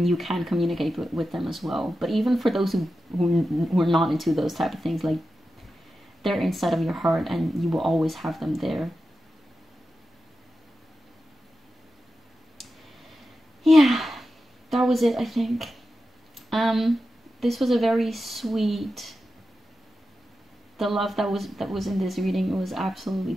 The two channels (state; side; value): normal; both; correlation 0.91